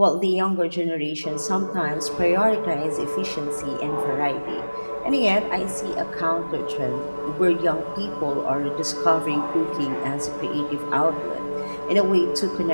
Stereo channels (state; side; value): inverted; both; correlation -1.00